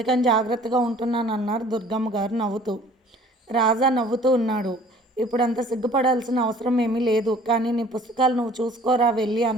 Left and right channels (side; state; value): both; normal; correlation 0.52